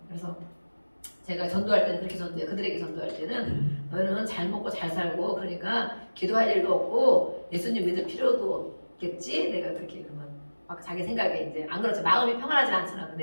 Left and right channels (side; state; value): both; inverted; correlation -1.00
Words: 그래서 제가 전도할 때는 그렇게 전도해요. 그들에게 전도할 때는 너희는 잘 먹고 잘 살고 그러니까 기도할 일도 없고 예수님 믿을 필요도 없겠지? 내가 그렇게 그러면 막 자기 생각에 이제 안 그렇죠. 마음이 평안하지 않잖아. 그